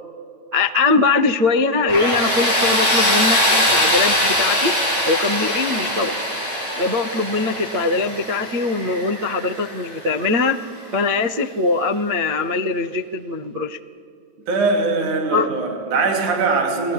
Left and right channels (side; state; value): left; late; 8.7 ms